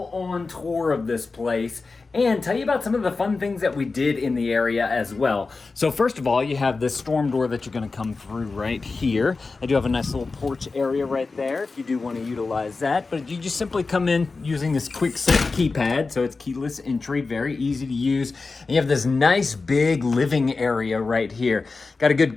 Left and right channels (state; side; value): quieter; right; 4.0 dB